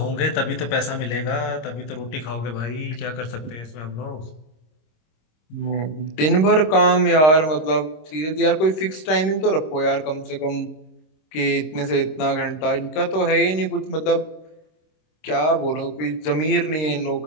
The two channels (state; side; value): late; right; 26 ms